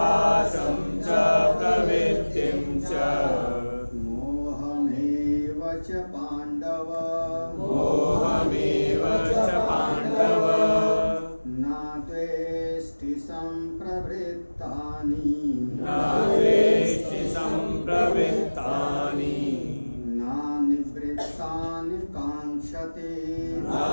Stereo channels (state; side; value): inverted; both; correlation -1.00